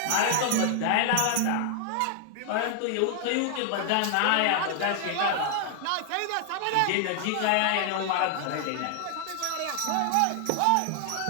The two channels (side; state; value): both; different; correlation 0.00